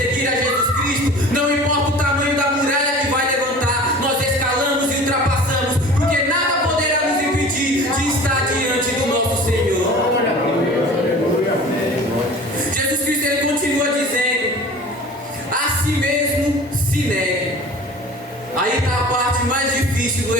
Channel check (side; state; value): both; normal; correlation 0.42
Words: a Jesus Cristo, não importa o tamanho da muralha que vai levantar, nós escalamos e ultrapassamos, porque nada poderá nos impedir de estar diante do nosso Senhor. Jesus Cristo, Ele continua dizendo: a si mesmo se negue. Aí está a parte mais difícil do